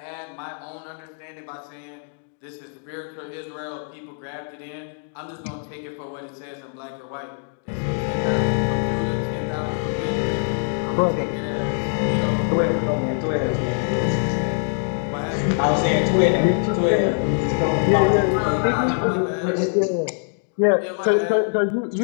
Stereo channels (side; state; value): right; silent; 57 dB below the other